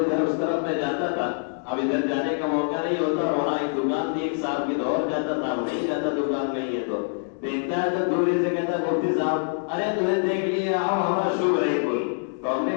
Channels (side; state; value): right; silent; digital silence